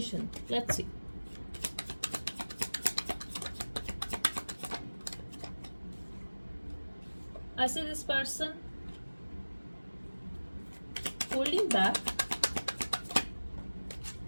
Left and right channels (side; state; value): both; inverted; correlation -1.00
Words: Let's see. I see this person holding back.